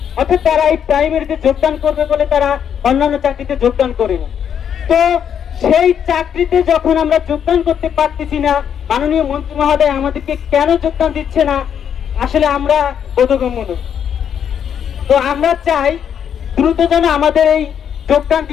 অর্থাৎ তারা এই প্রাইমারিতে যোগদান করবে বলে তারা অন্যান্য চাকরিতে যোগদান করেনি। তো সেই চাকরিতে যখন আমরা যোগদান করতে পারতেছি না, মাননীয় মন্ত্রী মহোদয় আমাদেরকে কেন যোগদান দিচ্ছে না, আসলে আমরা বোধগম্য নই। তো আমরা চাই দ্রুত যেন আমাদের এই যোগদান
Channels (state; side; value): quieter; right; 8.5 dB